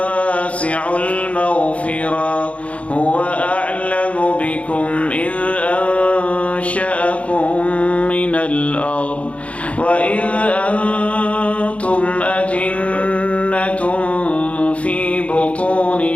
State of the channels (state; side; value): late; right; 0.064 ms